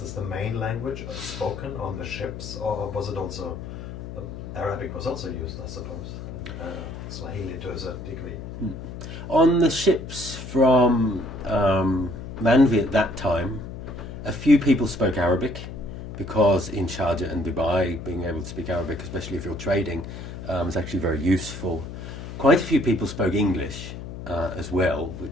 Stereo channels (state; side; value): noise; left; hum, 10 dB below the sound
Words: the main language spoken on the ships, or was it also, Arabic was also used, I suppose, and Swahili to a certain degree? On the ships from Mandvi at that time, a few people spoke Arabic, because in Sharjah and Dubai, being able to speak Arabic, especially if you're trading, is actually very useful. Quite a few people spoke English as well,